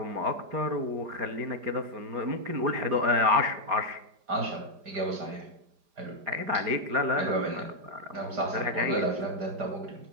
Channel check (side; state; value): left; late; 5.0 ms